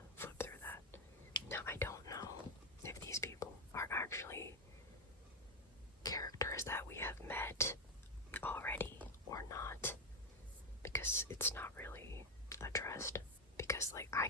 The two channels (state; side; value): normal; both; correlation 0.07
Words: flip through that. Now, I don't know if these people are actually characters that we have met already or not, because it's not really addressed. Because, like, I